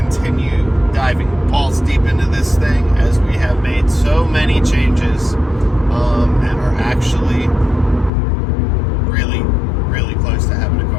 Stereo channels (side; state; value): right; drops out; at 8.1 s